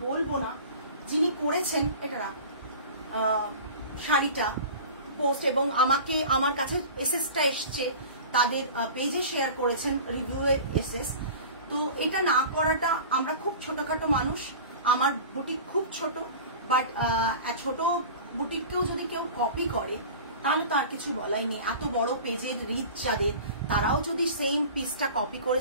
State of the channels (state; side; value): inverted; both; correlation -0.38